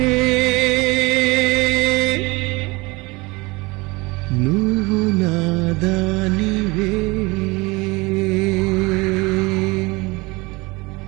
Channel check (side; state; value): left; quieter; 24.2 dB